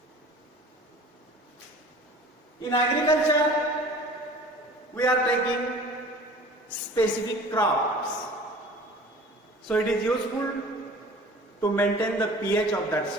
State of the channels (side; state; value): both; normal; correlation 0.44